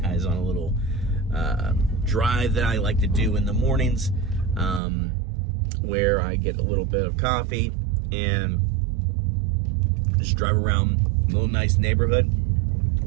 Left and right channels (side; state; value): left; drops out; at 4.8 s